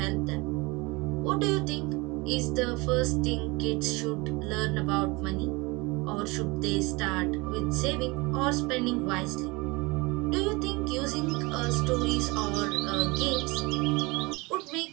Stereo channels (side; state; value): left; quieter; 25.0 dB